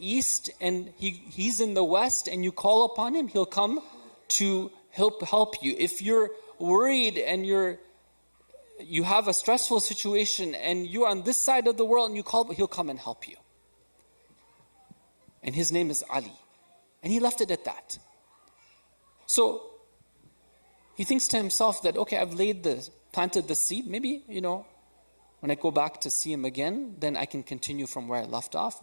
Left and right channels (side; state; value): both; inverted; correlation -1.00